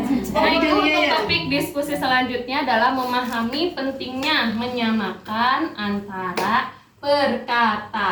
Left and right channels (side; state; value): both; identical; correlation 1.00